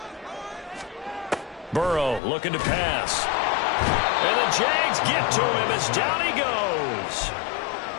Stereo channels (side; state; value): right; drops out; at 2.2 s